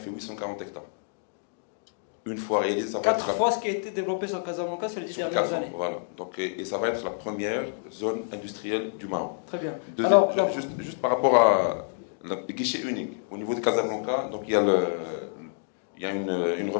840 hectares. Une fois réalisé, ça va être 4 fois ce qui a été développé sur Casablanca sur les 10 dernières années. Voilà. Donc, et ça va être la première zone industrielle du Maroc. Très bien. Alors, juste par rapport à le guichet unique, au niveau de Casablanca, donc il y a une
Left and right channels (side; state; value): right; silent; digital silence